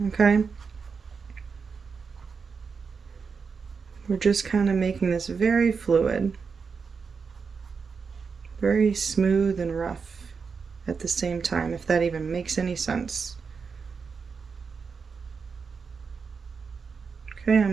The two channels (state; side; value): quieter; left; 5.5 dB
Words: okay? We're just kind of making this very fluid, very smooth and rough at the same time, if that even makes any sense. Okay,